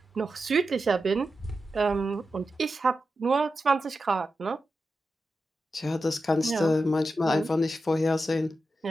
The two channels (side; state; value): both; normal; correlation 0.90